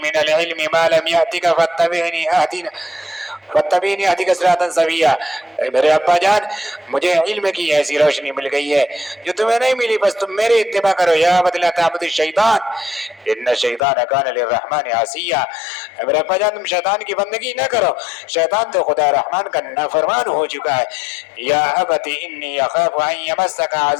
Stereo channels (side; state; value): right; drops out; at 13.8 s